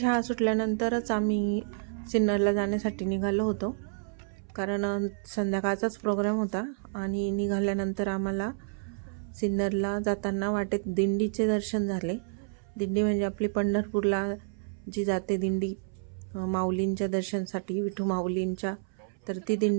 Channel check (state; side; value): silent; left; 58 dB below the other